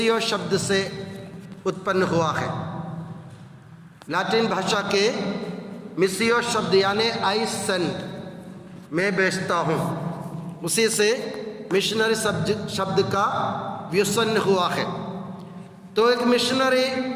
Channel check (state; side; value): identical; both; correlation 1.00